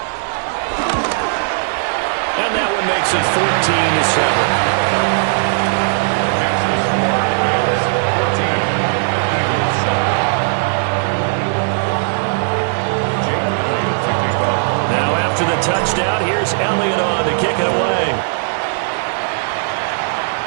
And that one makes it 14-7. After the touchdown, here's Elliott on to kick it away.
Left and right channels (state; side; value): silent; left; digital silence